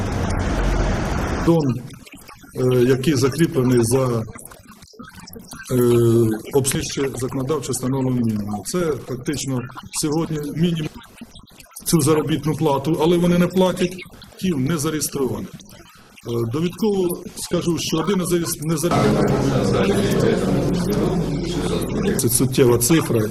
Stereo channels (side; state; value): both; identical; correlation 1.00